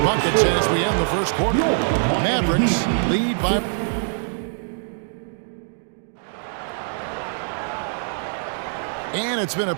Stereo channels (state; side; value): silent; left; digital silence